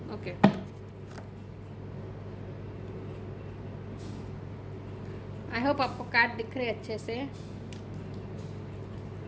Okay, I hope आपको कार्ड दिख रहे अच्छे से।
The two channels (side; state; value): both; identical; correlation 1.00